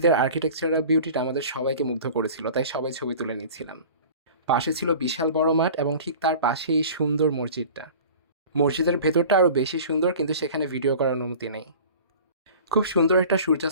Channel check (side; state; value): both; inverted; correlation -0.41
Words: আর্কিটেকচারাল বিউটিটা আমাদের সবাইকে মুগ্ধ করেছিল, তাই সবাই ছবি তুলে নিচ্ছিলাম। পাশে ছিল বিশাল বড় মাঠ, এবং ঠিক তার পাশেই সুন্দর মসজিদটা। মসজিদের ভেতরটা আরও বেশি সুন্দর, কিন্তু সেখানে ভিডিও করার অনুমতি নেই। খুব সুন্দর একটা